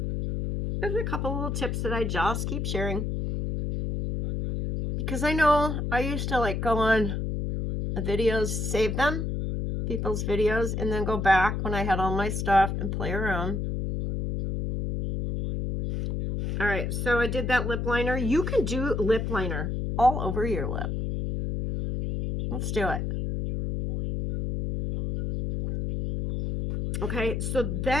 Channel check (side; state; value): left; noise; hum, 2 dB below the sound